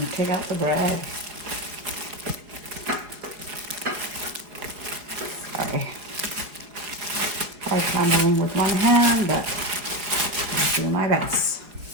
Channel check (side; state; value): left; late; 4.8 ms